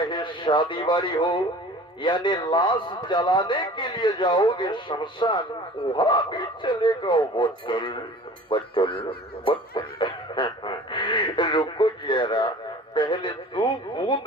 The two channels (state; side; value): normal; both; correlation 0.44